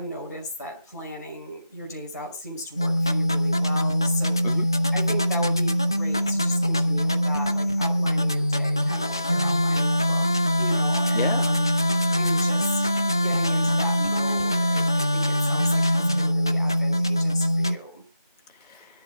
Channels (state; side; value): inverted; both; correlation -0.89